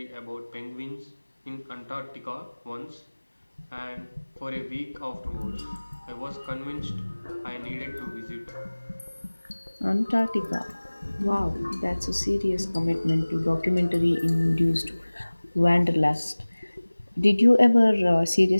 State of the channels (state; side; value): inverted; both; correlation -1.00